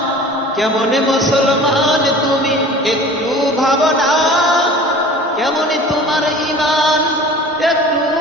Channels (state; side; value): normal; both; correlation 0.43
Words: কেমন মুসলমান তুমি একটু ভাবো না, কেমন তোমার ঈমান একটু